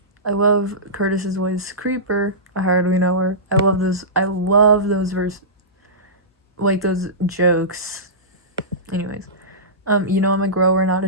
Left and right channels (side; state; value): both; normal; correlation -0.19